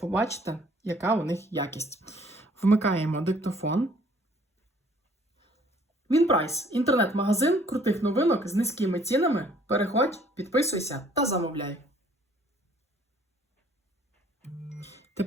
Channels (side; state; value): both; normal; correlation 0.59